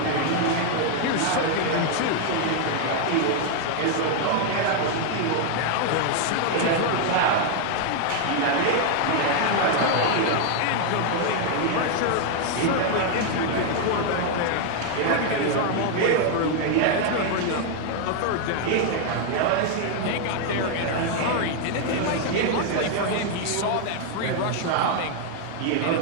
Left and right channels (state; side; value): different; both; correlation 0.00